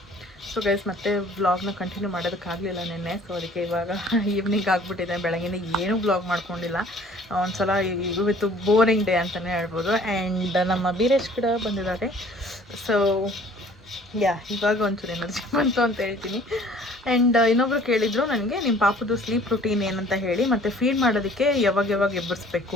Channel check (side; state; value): both; normal; correlation 0.53